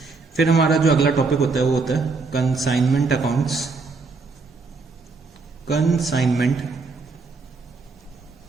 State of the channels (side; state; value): left; quieter; 4.2 dB